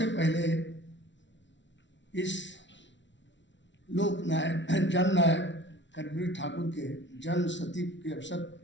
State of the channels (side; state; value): right; late; 0.53 ms